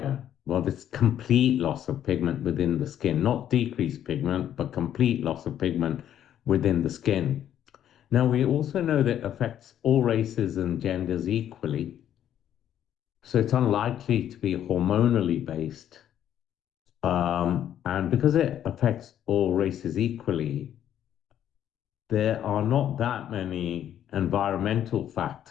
Well, it's complete loss of pigment within the skin, not decreased pigment, but complete loss of pigment within the skin. Now, we also know that it affects all races and genders equally, so it's unlikely to be hormonally based. And because it affects all races equally, there are not that many environmental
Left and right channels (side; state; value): right; quieter; 10.6 dB